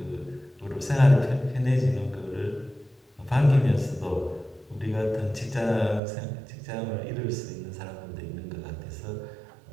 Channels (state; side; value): drops out; left; at 6.0 s